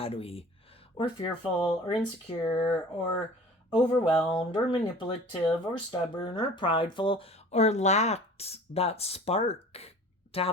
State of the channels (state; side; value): normal; both; correlation 0.44